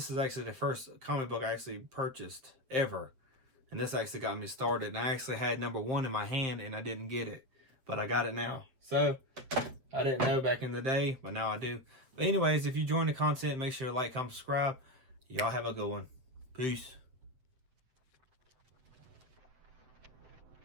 is actually the first comic book I actually purchased ever. And this actually got me started. And I actually had number 1 in my hand and I didn't get it. But I got it now. So, I didn't know back in the day, but now I do. But anyways, if you enjoyed the content, make sure to like, comment, subscribe. Y'all have a good one. Peace.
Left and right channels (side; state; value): left; late; 8.0 ms